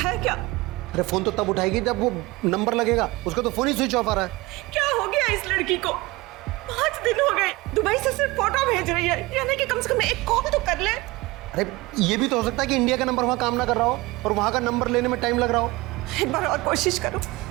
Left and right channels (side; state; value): left; quieter; 21.7 dB